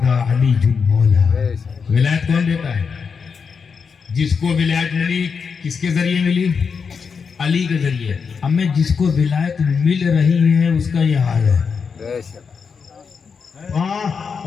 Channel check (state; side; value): quieter; right; 5.8 dB